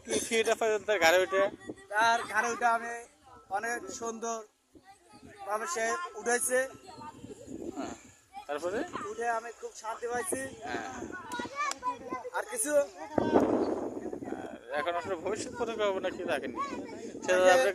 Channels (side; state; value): both; identical; correlation 1.00